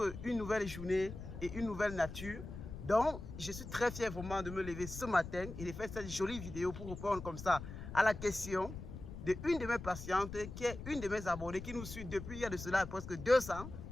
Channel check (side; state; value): left; noise; rumble, 10 dB below the sound